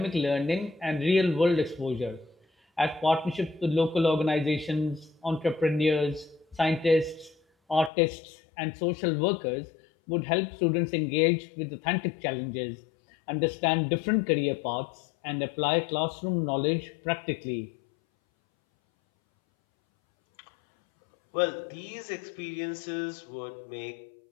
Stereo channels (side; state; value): right; drops out; at 7.9 s